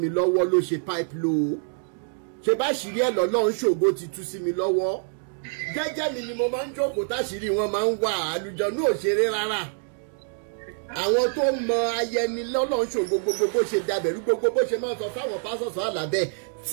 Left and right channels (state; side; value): silent; left; digital silence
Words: lọ́wọ́ ló ṣe pipe low. Ṣé bá ṣìrí ẹ lọ́lọ́run ṣògo ti tú sí mi lọ́wọ́. Jẹ́jẹ́ mi ni mo máa ń jókòó táṣìírí wọn máa ń wà àlùjọ̀nú òṣèré rárá. Àwọn tó mọ ayẹni lọ́lọ́run ṣògo gbogbo bó ṣe dàbẹ̀rú gbogbo bó ṣe máa ń sọ fáwọn pásọ̀sọ̀ àlàbẹ̀